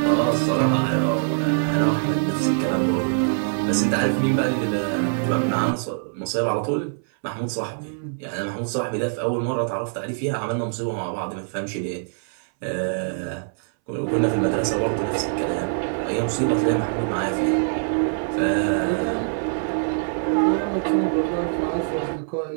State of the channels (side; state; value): left; silent; 63 dB below the other